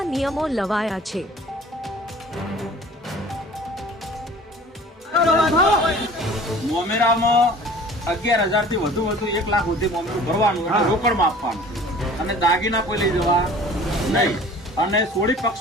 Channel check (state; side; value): normal; both; correlation 0.47